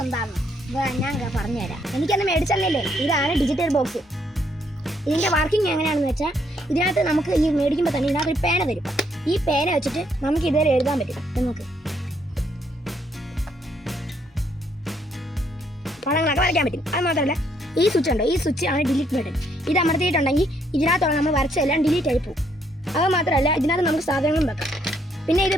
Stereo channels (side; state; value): both; normal; correlation 0.71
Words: എന്താണെന്ന്. ഞാൻ പറഞ്ഞുതരാം. എനിക്കന്ന് മേടിച്ചല്ലേ. ഇതാണ് ഡിജിറ്റൽ ബോക്സ്. ഇതിന്റെ വർക്കിംഗ് എങ്ങനെയാണെന്ന് വെച്ചാൽ ഇതിനകത്ത് നമുക്ക് ഈ മേടിക്കുമ്പോൾ തന്നെ ഇതിനകത്ത് ഒരു പേന തരും. ഈ പേന വെച്ചിട്ട് നമുക്ക് ഇതുവരെ എഴുതാൻ പറ്റും. നമുക്ക് പടങ്ങളൊക്കെ വരയ്ക്കാൻ പറ്റും. അത് മാത്രമല്ല ഈ സ്വിച്ച് ഉണ്ടോ, ഈ സ്വിച്ച് ആണ് ഡിലീറ്റ് ബട്ടൺ. ഇത് അമർത്തിയിട്ടുണ്ടെങ്കിൽ ഇതിനകത്തുള്ള നമ്മൾ വരച്ചെല്ലാം ഡിലീറ്റ് ആയി പോകും. അത് മാത്രമല്ല ഇതിനകത്ത് നമുക്ക് സാധനങ്ങളും വെക്കാം. പിന്നെ ഇത്